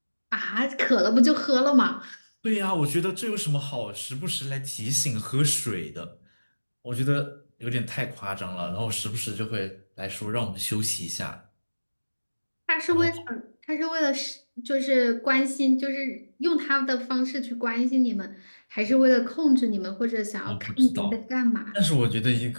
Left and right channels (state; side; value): inverted; both; correlation -1.00